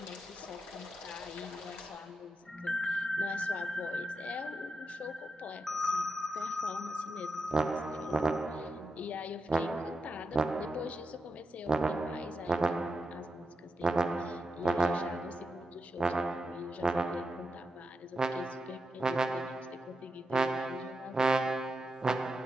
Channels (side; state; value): both; normal; correlation 0.87